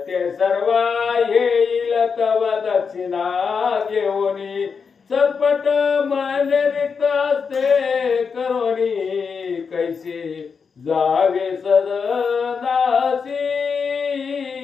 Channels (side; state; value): right; quieter; 5.7 dB